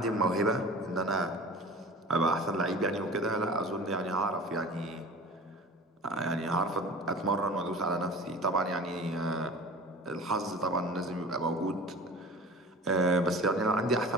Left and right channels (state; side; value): normal; both; correlation 0.39